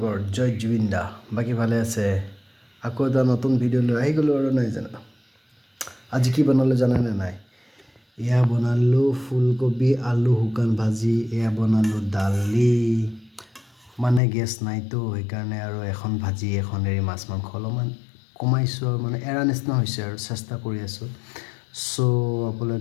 জয় জুবিন দা। বাকী ভালে আছে? আকৌ এটা নতুন ভিডিঅ' লৈ আহি গ'লোঁ আৰু নাই জানো। আজি কি বনালোঁ জানেনে নাই? এয়া বনালোঁ ফুলকবি আলু শুকান ভাজি, এয়া বনালোঁ দালি, মানে গেছ নাইতো সেইকাৰণে আৰু এখন ভাজি এখন এৰি মাছ মাংস অলপমান কমাইছোঁ আৰু মানে এৰা নিচিনা হৈছে আৰু চেষ্টা কৰি আছোঁ। চ'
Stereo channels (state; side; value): drops out; right; at 14.2 s